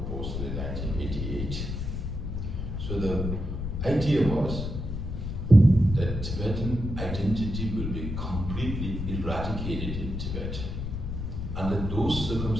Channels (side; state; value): left; noise; rumble, 4 dB below the sound